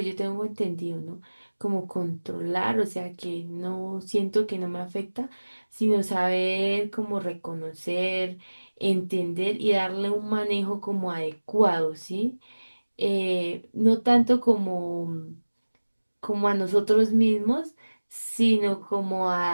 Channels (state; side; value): inverted; both; correlation -1.00